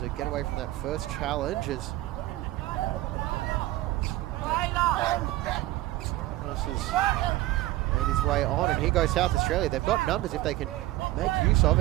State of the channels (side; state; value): left; quieter; 17.1 dB